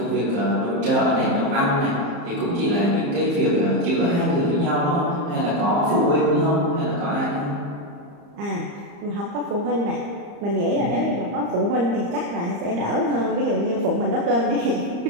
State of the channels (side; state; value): left; late; 35 ms